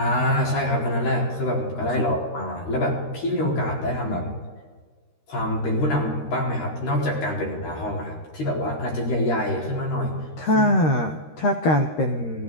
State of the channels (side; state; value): right; late; 13 ms